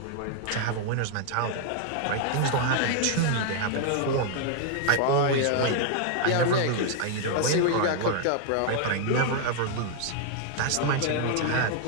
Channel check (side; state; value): both; different; correlation 0.00